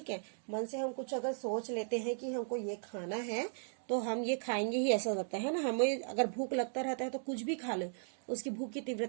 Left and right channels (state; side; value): silent; left; digital silence